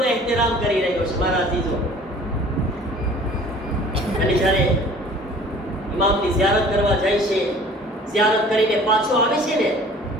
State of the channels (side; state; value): both; normal; correlation 0.49